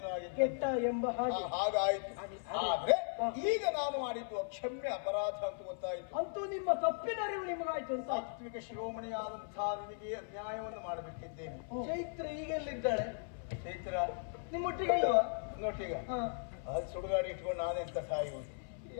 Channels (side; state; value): right; silent; 53 dB below the other